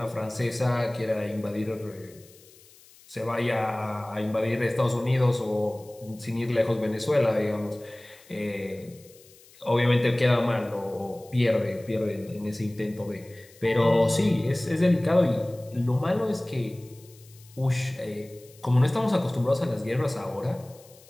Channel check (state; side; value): noise; left; hiss, 25 dB below the sound